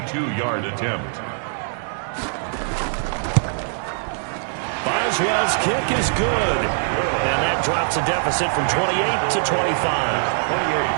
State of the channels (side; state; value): left; silent; digital silence